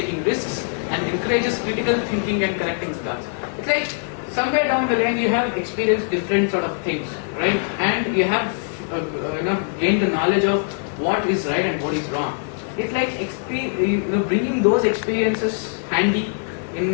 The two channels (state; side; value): silent; right; digital silence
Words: risks, and encourages critical thinking and connecting the dots. It's like somewhere down the line you have experienced different sort of things, right? And you have gained the knowledge of what is right and what is wrong. It's like bringing those experiences handy in